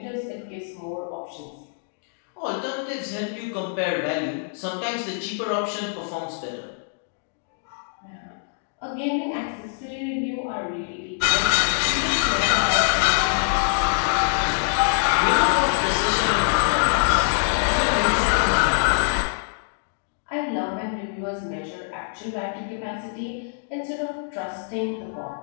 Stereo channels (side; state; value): right; silent; digital silence